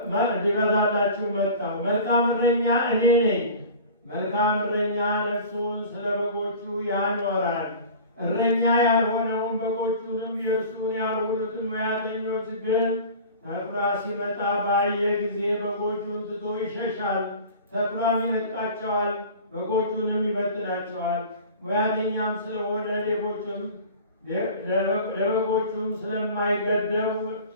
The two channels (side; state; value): both; inverted; correlation -0.40